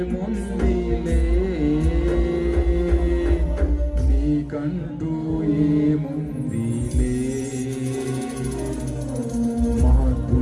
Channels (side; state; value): both; identical; correlation 1.00